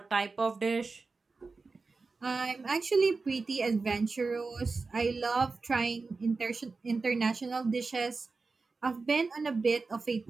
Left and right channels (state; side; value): quieter; left; 4.1 dB